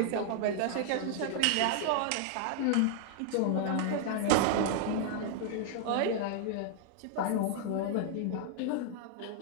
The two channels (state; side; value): different; both; correlation 0.00